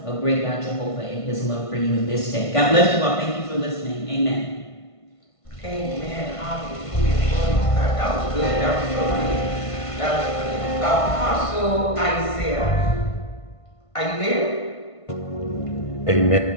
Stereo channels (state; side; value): late; right; 1.5 ms